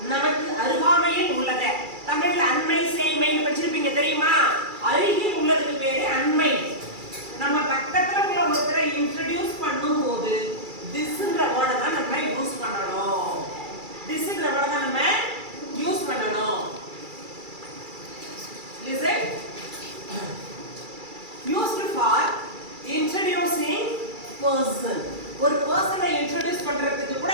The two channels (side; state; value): left; late; 2.3 ms